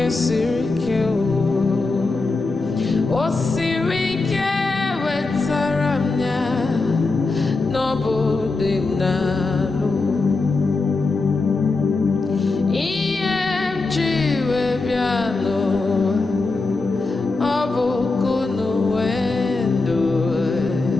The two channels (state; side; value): quieter; right; 3.6 dB